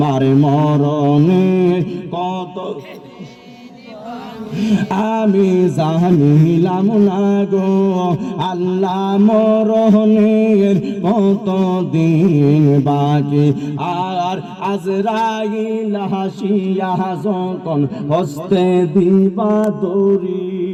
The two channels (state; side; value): identical; both; correlation 1.00